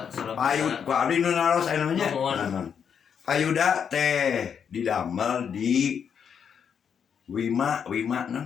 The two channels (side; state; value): right; quieter; 7.4 dB